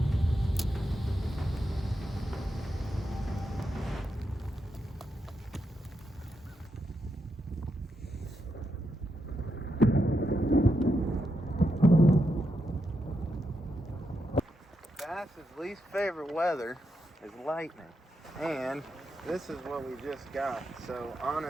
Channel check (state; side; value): normal; both; correlation 0.84